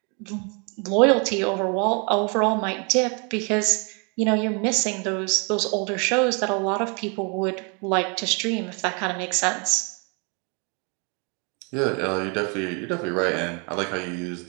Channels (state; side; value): quieter; left; 34.3 dB